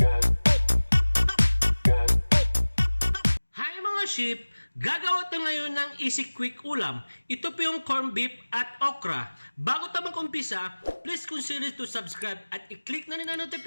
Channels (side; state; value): both; inverted; correlation -1.00